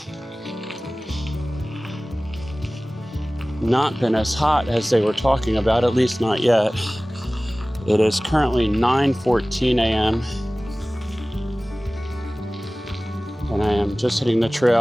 not been as hot as they were talking about, at least not yet. It is currently 9:14 a.m. and I am just hitting the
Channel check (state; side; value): normal; both; correlation 0.98